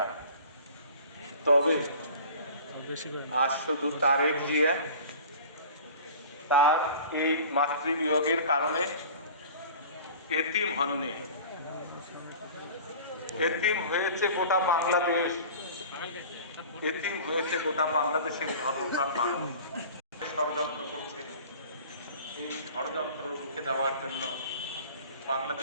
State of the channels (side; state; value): both; inverted; correlation -0.41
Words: তবে আজ শুধু তারেক জিয়া তার এই মাতৃবিয়োগের কারণে এতিম হননি, এতিম হয়েছে গোটা বাংলাদেশ, এতিম হয়েছে গোটা বাংলাদেশের ধর্মপ্রাণ মানুষ। ষড়যন্ত্র করছে, এই ষড়যন্ত্র রুখে দেওয়ার জন্য